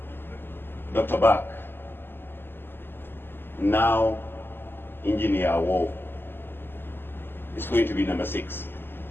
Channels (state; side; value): late; right; 0.10 ms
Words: Dr. Bak. Now, Engineer Awuow is going to be number 6.